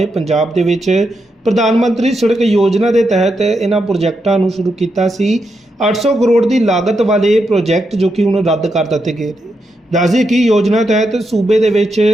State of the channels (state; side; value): normal; both; correlation 0.84